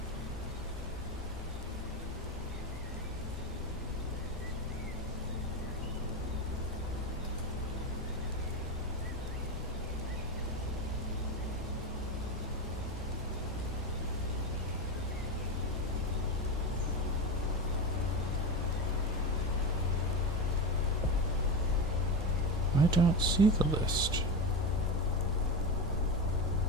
I don't see the list.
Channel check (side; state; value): both; normal; correlation 0.18